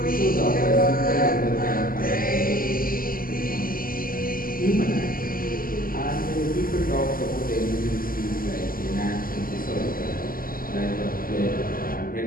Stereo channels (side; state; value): right; late; 0.42 ms